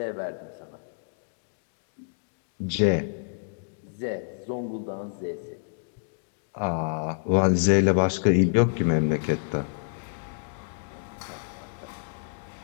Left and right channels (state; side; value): silent; right; digital silence